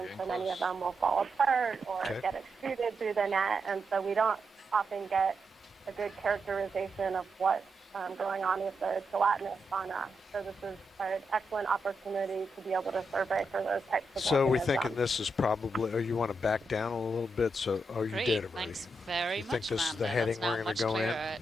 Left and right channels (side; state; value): both; normal; correlation 0.84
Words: so many of them will fall apart or get extruded through the net, and so we don't often get a good characterization of what's going on with the gelatinous fauna. So this is an excellent opportunity to be able to survey for those types of So we're organisms. thinking this is probably, you want to back down a little bit? So, you Great. did already. Thanks very you much, think this is the Amanda. heading That's now we're going much to go in? clearer